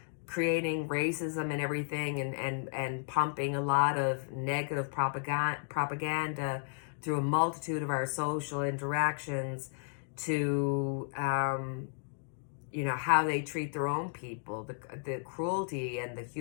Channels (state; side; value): silent; right; digital silence